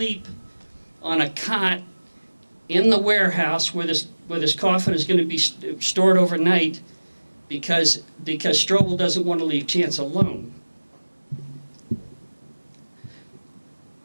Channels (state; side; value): inverted; both; correlation -1.00